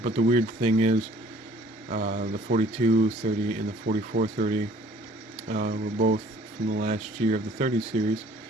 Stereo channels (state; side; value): normal; both; correlation 0.55